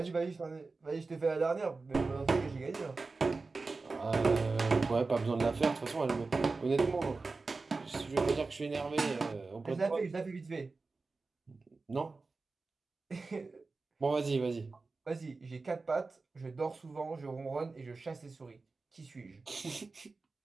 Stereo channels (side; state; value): left; quieter; 3.9 dB